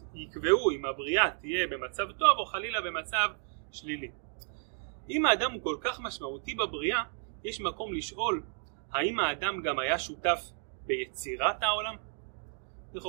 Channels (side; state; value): left; silent; 56 dB below the other